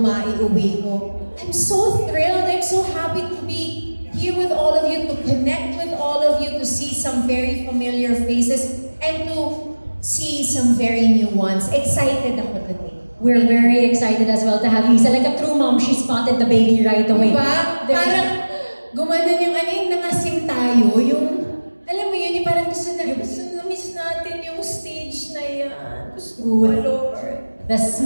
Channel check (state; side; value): inverted; both; correlation -1.00